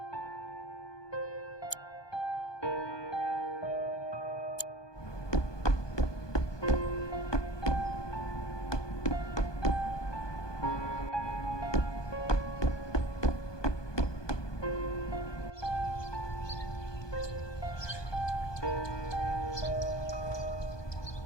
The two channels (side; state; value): right; late; 1.2 ms